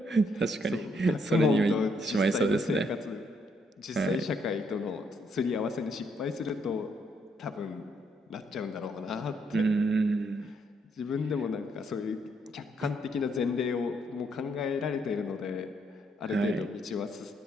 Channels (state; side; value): normal; both; correlation 0.73